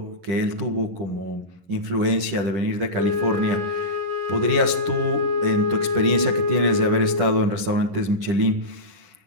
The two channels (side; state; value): left; late; 11 ms